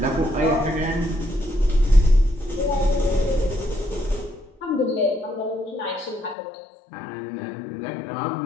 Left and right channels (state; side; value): drops out; right; at 6.4 s